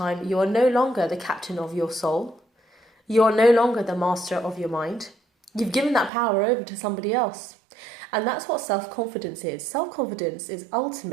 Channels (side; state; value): left; drops out; at 6.1 s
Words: you are no longer the captain of your soul. You are no longer the master of your mind. You've given that power over to somebody else. And that's what self-confidence is. Self-confidence is